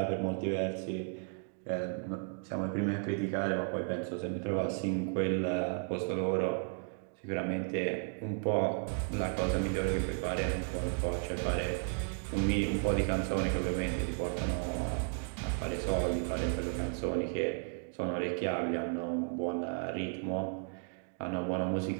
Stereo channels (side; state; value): left; silent; 55 dB below the other